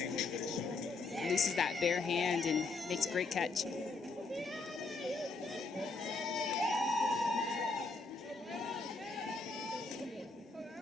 Looses that bare hand and makes a great catch.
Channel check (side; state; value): right; quieter; 3.9 dB